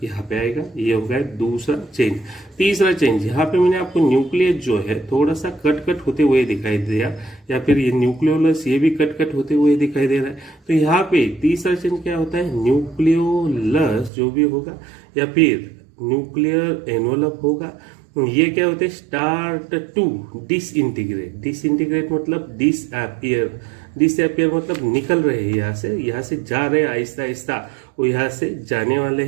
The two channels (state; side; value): drops out; left; at 14.1 s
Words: यहाँ पे आएगा। ये हो गया दूसरा चेंज। तीसरा चेंज यहाँ पे मैंने आपको न्यूक्लियस जो है थोड़ा सा कट होते हुए दिखाई दिया, या फिर ये न्यूक्लियोलस ये भी कट होते हुए दिखाई दे रहा है। तो यहाँ पे तीसरा चेंज क्या होता है? न्यूक्लियोलस जो भी होगा या फिर न्यूक्लियर एनवलप होगा, ये क्या होते हैं? Start to disintegrate. डिसइंटीग्रेट मतलब डिसअपियर। डिसअपियर मतलब निकल रहे हैं यहाँ से जा रहे हैं आहिस्ता आहिस्ता, वो यहाँ से जाने वाले